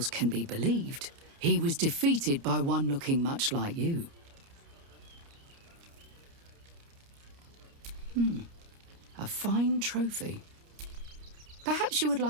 can be believed, he was defeated by one looking much like you. A fine trophy. Perhaps you would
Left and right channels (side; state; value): left; late; 29 ms